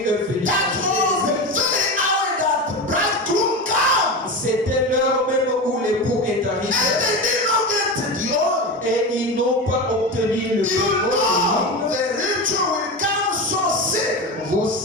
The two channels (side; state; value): both; normal; correlation 0.23